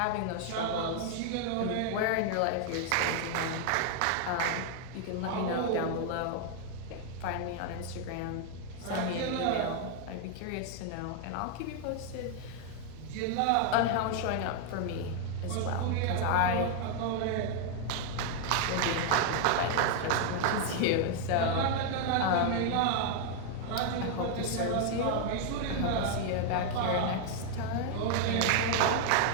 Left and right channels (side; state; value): both; different; correlation 0.00